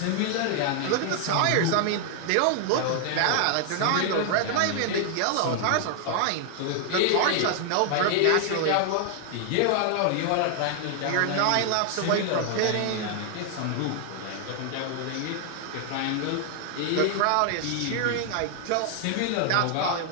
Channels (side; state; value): both; different; correlation 0.00